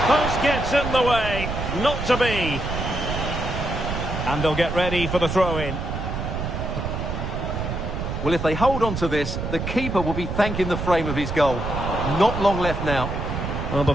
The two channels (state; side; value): noise; right; rumble, 4 dB below the sound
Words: post gets in the way. Not to be. And they'll get ready for the throw-in. Well, if they hold on to this, the keeper will be thanking the frame of his goal. Not long left now. Well,